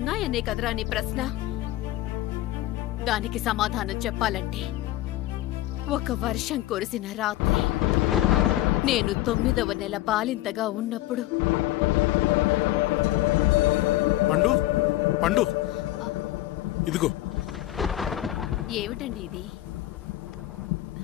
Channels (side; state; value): right; quieter; 15.8 dB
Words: కదరా నీ ప్రశ్న. దానికి సమాధానం చెప్పాలంటే, ఒక వర్షం కురిసిన రాత్రి నేను 9వ నెల బాలింతగా ఉన్నప్పుడు. పండు పండు, ఇదిగో. ఏమిటండి ఇది?